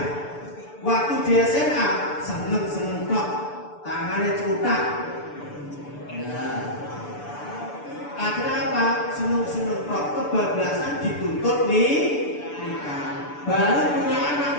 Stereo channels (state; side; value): late; right; 6.9 ms